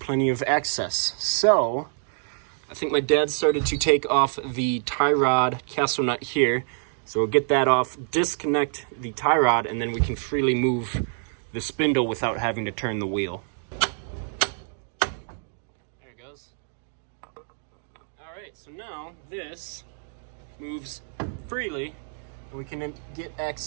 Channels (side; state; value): left; silent; digital silence